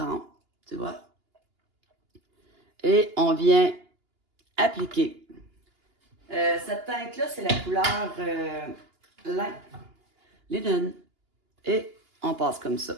tu vois. Et on vient appliquer. Cette teinte-là, c'est la couleur linen. Et on passe comme ça.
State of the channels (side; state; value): left; late; 2.9 ms